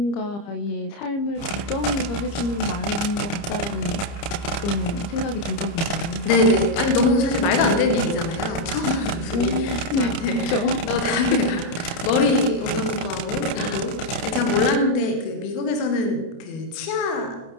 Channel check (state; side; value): late; right; 30 ms